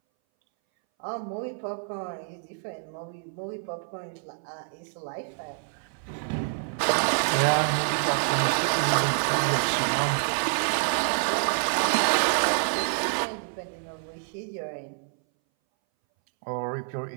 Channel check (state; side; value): silent; left; 60 dB below the other